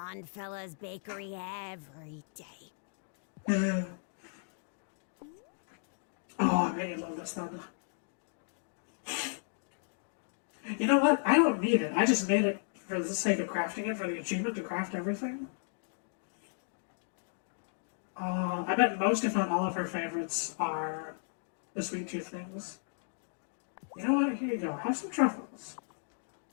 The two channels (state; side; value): silent; right; digital silence